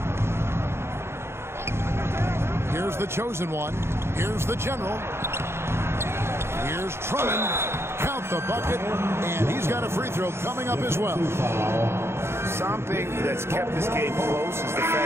Here's the chosen one. Here's the general. Here's Drummond. Count the bucket. And he's got a free throw coming up as well. Something that's kept this game close is the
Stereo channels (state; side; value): late; left; 0.12 ms